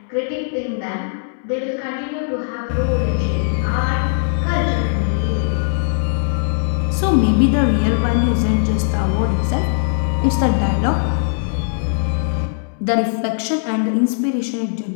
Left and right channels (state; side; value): silent; right; digital silence